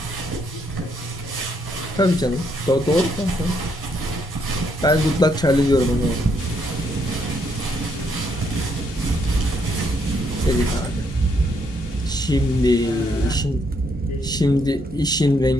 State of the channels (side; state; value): both; normal; correlation 0.73